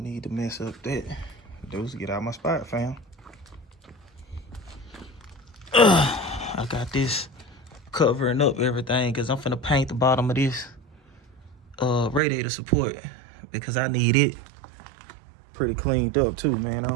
need to mess up that. Dudes, get out my spot, fam. I got this covering up everything because I'm finna paint the bottom of this radiator support because I need it pretty cleaned up too, man. I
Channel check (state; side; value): drops out; left; at 12.2 s